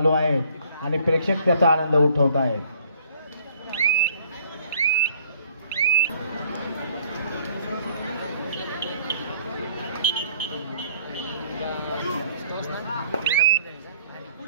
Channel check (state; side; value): inverted; both; correlation -0.59